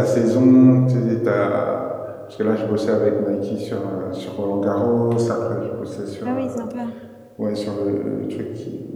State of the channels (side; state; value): both; identical; correlation 1.00